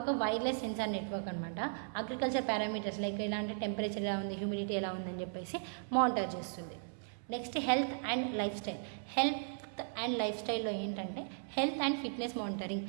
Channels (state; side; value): silent; left; 53 dB below the other